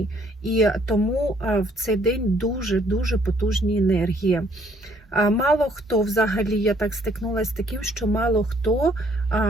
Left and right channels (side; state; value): both; normal; correlation 0.64